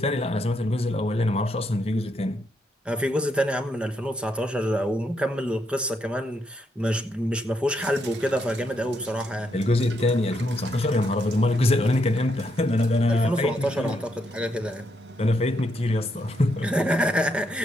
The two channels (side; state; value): both; normal; correlation 0.78